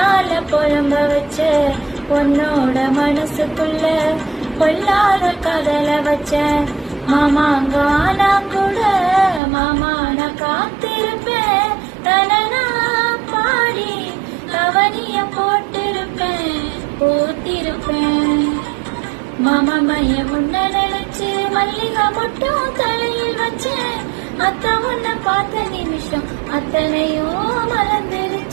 புலம்ப வச்ச உன்னோட மனசுக்குள்ள பொல்லாத கதல வச்ச மாமாங்க ஆனா கூட மாமா நான் காத்திருப்பேன். தனனா பாடி கவனிய போட்டிருப்பேன் போத்திருப்பேன். மாமா மைய முன்ன நினைச்சு மல்லிகை மட்டும் தலையில் வச்சேன். அத்த உன்னை பார்த்த நிமிஷம் அத்தனையும்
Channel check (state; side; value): drops out; left; at 9.4 s